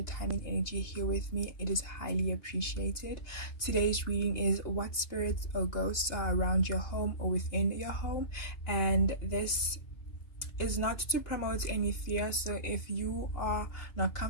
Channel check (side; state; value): right; late; 2.8 ms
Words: time and energy here with me. It is highly appreciated. Today's reading is what spirits or ghosts are around your home or within your home, and this is not to promote any fear, so if you are not